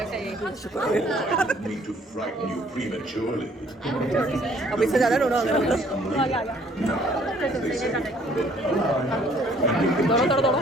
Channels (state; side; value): normal; both; correlation 0.60